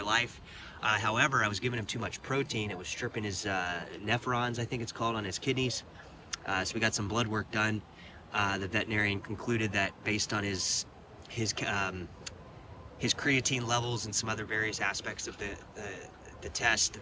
life. However, I was giving him too much protein. It was stripping his nephrons, I think it's called, on his kidneys. So we got some blood work done. The veterinarian concluded that based on his creatine levels and some other various aspects of the test,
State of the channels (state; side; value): identical; both; correlation 1.00